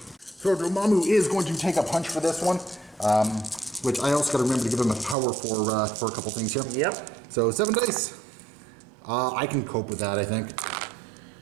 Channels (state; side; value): drops out; left; at 5.2 s